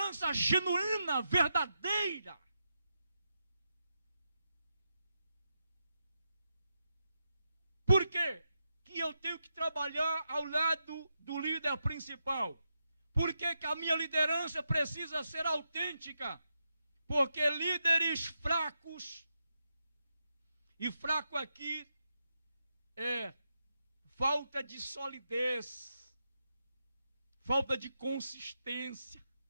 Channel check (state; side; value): inverted; both; correlation -0.85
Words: genuína, verdadeira. Por quê? Que eu tenho que trabalhar ao lado do líder principal? Por que que a minha liderança precisa ser autêntica? Porque líderes fracos, e fraco aqui é falta de solidez, falta de consistência.